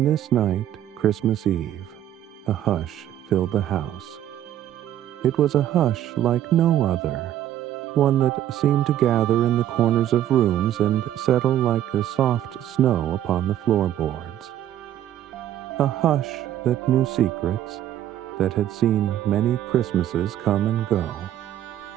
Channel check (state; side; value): quieter; left; 11.6 dB